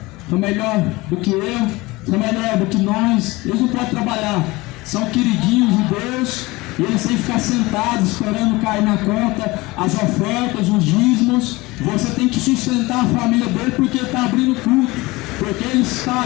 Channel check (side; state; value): right; quieter; 21.7 dB